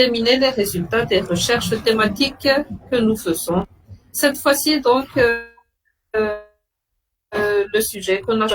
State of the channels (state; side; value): identical; both; correlation 1.00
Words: les résultats des recherches thématiques que nous faisons. Cette fois-ci donc le sujet qu'on a